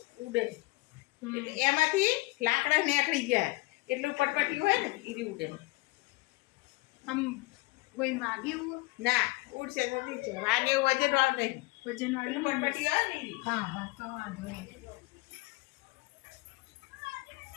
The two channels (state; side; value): quieter; right; 22.9 dB